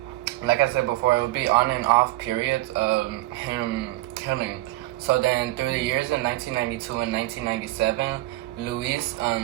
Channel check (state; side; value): quieter; left; 18.3 dB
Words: like I said before, it would be on and off periods of him killing. So then through the years in 1992 and 1997, Luis